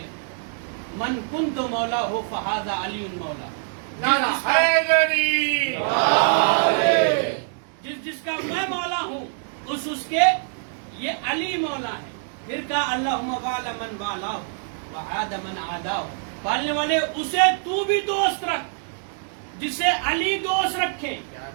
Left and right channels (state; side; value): silent; left; digital silence